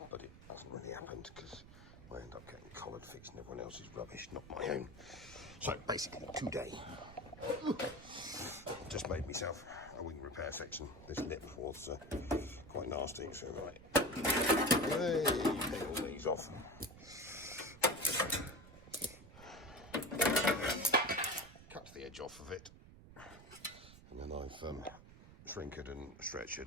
but it hasn't really happened because I end up getting collared fixing everyone else's rubbish, not my own. So basically today, I've just made myself a wing repair section. This lip was quite nasty, so right, hey, take all these off. Cut the edge off of it, and then I've shrinked and stretched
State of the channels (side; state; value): right; noise; rumble, 18 dB below the sound